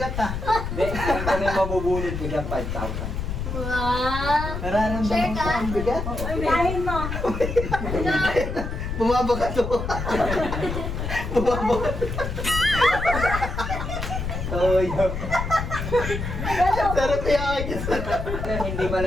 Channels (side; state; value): left; noise; rumble, 4 dB below the sound